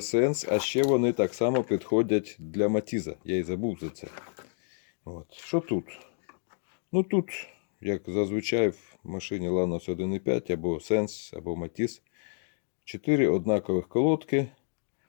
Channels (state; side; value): silent; right; digital silence